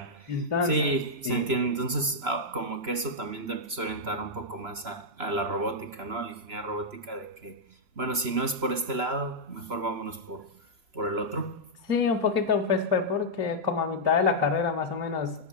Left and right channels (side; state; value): left; late; 3.0 ms